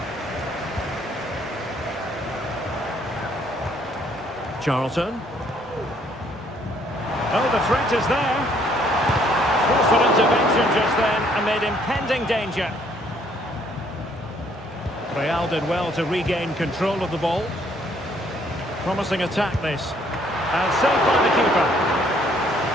Charlton. Oh, the threat is there. Forceful intervention just then amid impending danger. Real did well to regain control of the ball. Promising attack this. And saved by the keeper.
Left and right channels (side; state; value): both; normal; correlation 0.65